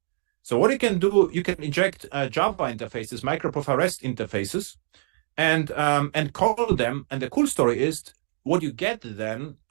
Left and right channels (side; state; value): left; silent; digital silence